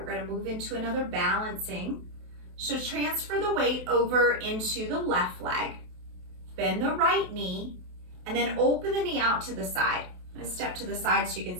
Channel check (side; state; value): left; late; 28 ms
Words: going to move into another balancing. So transfer the weight over into the left leg. Bend the right knee and then open the knee out to the side. I'm going to step to the side so you can